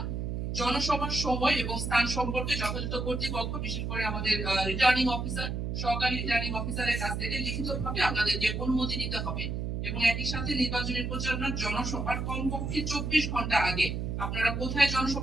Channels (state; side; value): noise; right; hum, 3 dB below the sound